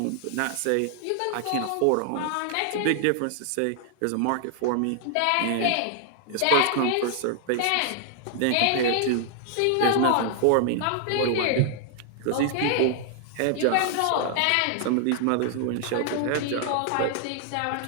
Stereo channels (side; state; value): both; different; correlation 0.00